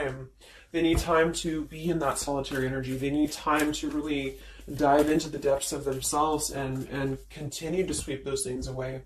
They need time to be in that solitary energy. They need time to really dive into the depths of themselves and continue to sweep those things away.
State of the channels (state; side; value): identical; both; correlation 1.00